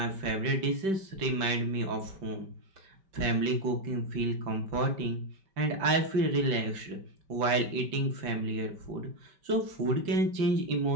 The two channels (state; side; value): late; left; 5.1 ms